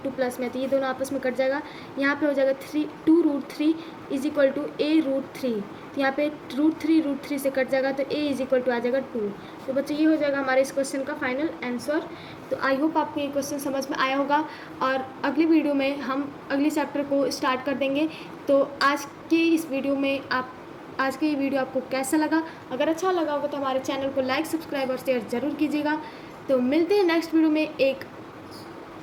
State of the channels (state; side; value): identical; both; correlation 1.00